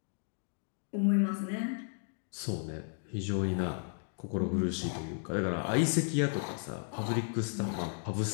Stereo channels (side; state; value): right; silent; 55 dB below the other